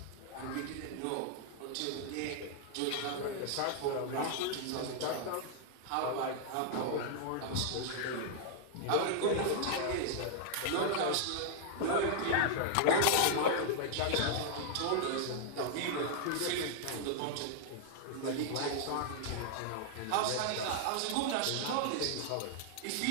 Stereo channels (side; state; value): both; different; correlation -0.01